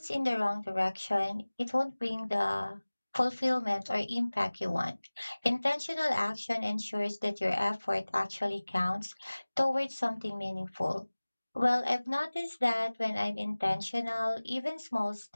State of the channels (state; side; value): inverted; both; correlation -1.00